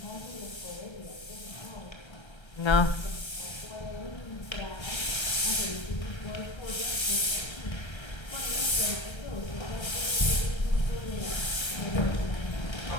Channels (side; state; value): right; late; 1.3 ms